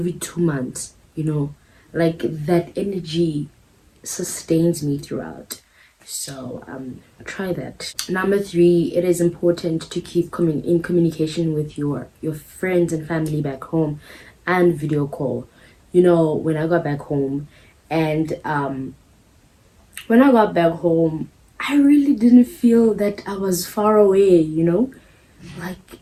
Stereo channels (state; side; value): identical; both; correlation 1.00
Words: 2 months, like that energy sustains me throughout. So try that. Number three, it is important to keep in communication with your friends and family back home, and video call. When I got back home, and when I got back home, I really didn't feel that I was far away. Like,